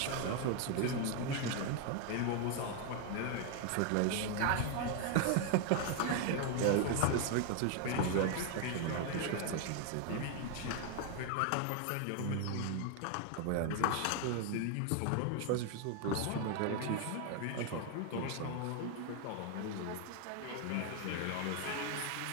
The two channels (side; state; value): both; different; correlation 0.01